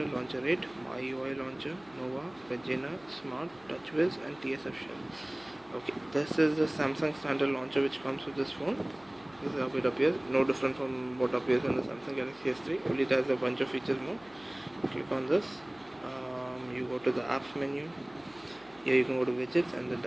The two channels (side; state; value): left; noise; hum, 27 dB below the sound